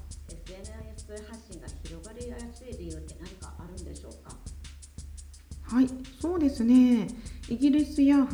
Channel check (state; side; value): identical; both; correlation 1.00